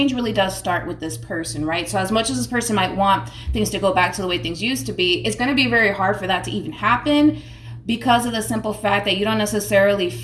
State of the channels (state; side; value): identical; both; correlation 1.00